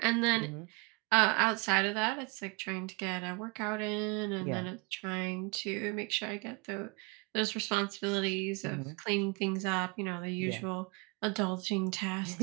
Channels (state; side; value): quieter; left; 29.5 dB